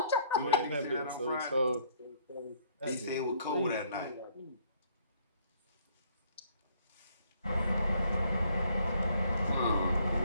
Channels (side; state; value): both; inverted; correlation -0.63